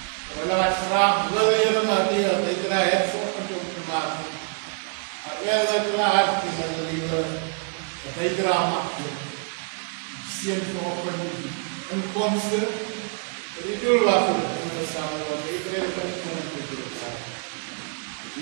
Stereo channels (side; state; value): left; quieter; 39.0 dB